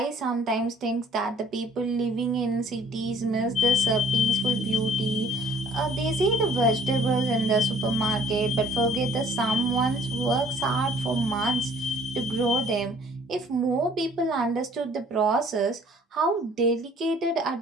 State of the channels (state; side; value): normal; both; correlation 0.55